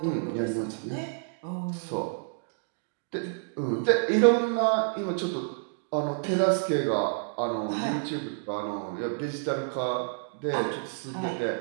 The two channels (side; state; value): left; silent; digital silence